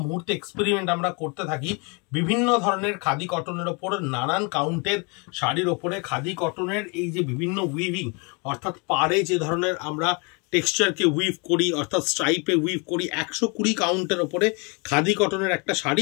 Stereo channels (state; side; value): quieter; right; 32.1 dB